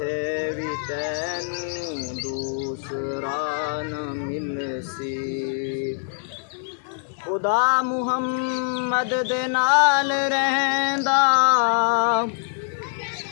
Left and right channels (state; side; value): silent; right; 63 dB below the other